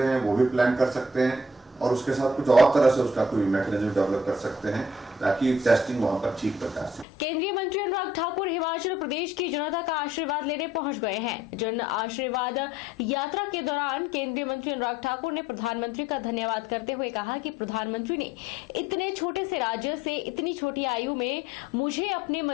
हैं, वो भी प्लान कर सकते हैं और उसके साथ कुछ और तरह से उसका कोई मैकेनिज्म डेवलप कर सकते हैं ताकि टेस्टिंग वहां पर ठीक प्रकार से। केंद्रीय मंत्री अनुराग ठाकुर हिमाचल प्रदेश की जनता का आशीर्वाद लेने पहुंच गए हैं। जन आशीर्वाद यात्रा के दौरान केंद्रीय मंत्री अनुराग ठाकुर ने प्रधानमंत्री का धन्यवाद करते हुए कहा कि प्रधानमंत्री ने इतने छोटे से राज्य से इतनी छोटी आयु में मुझे अपने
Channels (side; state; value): both; normal; correlation 0.61